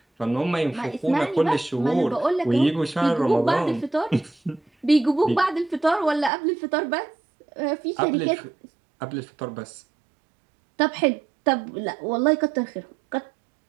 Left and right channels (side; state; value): left; drops out; at 6.3 s